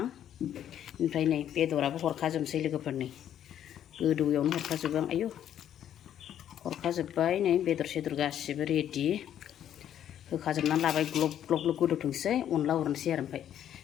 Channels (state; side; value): quieter; right; 10.4 dB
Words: ओमफ्राय नै बेदराबो हरखाजोबनोसै लोगोफोर नै गोदौयावनो हरखाजोबो आं आयौ हरखाजोब्बाय नै बेदर सेदर गासिबो रेडि होखाजोबनानै लाबाय ग्लब ग्लब ग्लब गोदौथोंसै अनला उरनोसै आरो ओमफ्राय